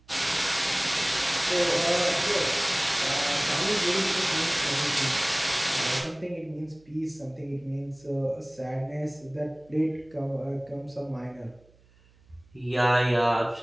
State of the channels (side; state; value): right; noise; hum, 30 dB below the sound